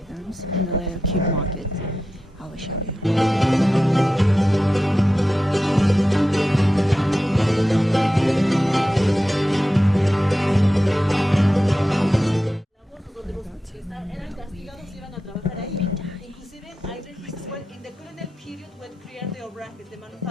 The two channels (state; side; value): normal; both; correlation 0.91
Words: in the little cube market. I will show you. Eran castigados y iban a trabajar ahí. Inclusive hay registros where in the colonial period when created the Obrajes, the